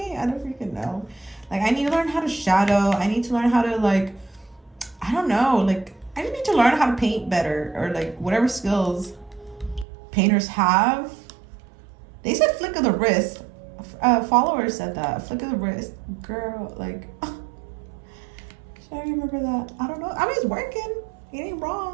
I don't freaking know. Like, I need to learn how to shadow. I need to learn how to like, I don't know. Like, I just need to learn how to paint better, or like whatever skills painters have. They said flick of the wrist. Followers said that. Flick of the wrist. Girl, like, should I remember that? I don't know. I mean, it's working. It ain't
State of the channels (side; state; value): left; drops out; at 9.9 s